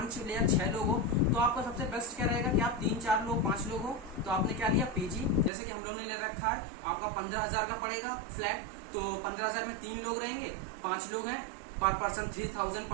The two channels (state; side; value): drops out; left; at 5.5 s